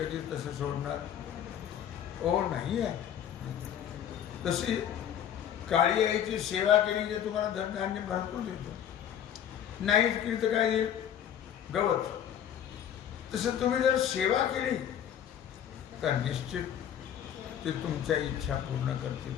तसं सोडणार नाही आहे. तशी काळी आईची सेवा केली जे तुम्हाला धनधान्य भरपूर देतो, नाहीच केली तर काय देईल? गवत. तसं तुम्ही जर सेवा केली तर निश्चित ते तुमच्या इच्छा पूर्ण करतील.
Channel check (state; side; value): quieter; right; 9.7 dB